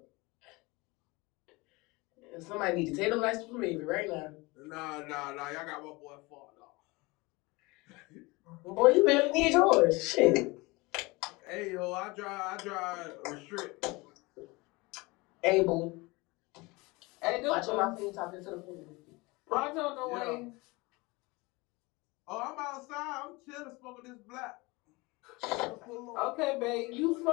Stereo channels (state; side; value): quieter; right; 24.2 dB